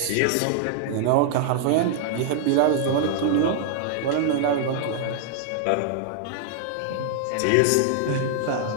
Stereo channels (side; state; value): both; different; correlation -0.01